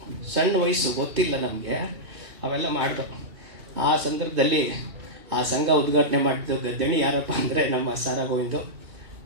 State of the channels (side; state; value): left; late; 2.6 ms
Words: ಸಣ್ಣ ವಯಸ್ಸು, ಗೊತ್ತಿಲ್ಲ ನಮಗೆ, ಅವೆಲ್ಲ ಮಾಡಿದ್ರು. ಆ ಸಂದರ್ಭದಲ್ಲಿ ಆ ಸಂಘ ಉದ್ಘಾಟನೆ ಮಾಡಿದ್ದು ದಣಿ ಯಾರಪ್ಪ ಅಂದರೆ ನಮ್ಮ ಸಾರಾ ಗೋವಿಂದು